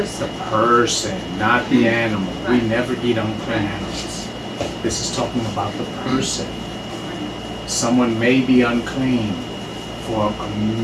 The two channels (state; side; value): identical; both; correlation 1.00